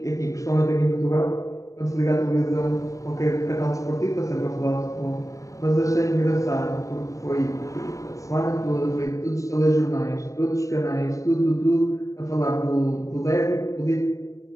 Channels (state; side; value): late; right; 0.16 ms